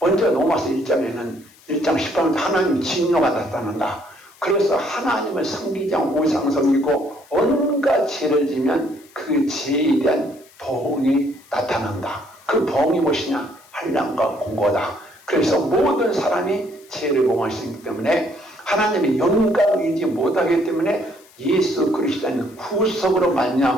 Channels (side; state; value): left; noise; hiss, 27 dB below the sound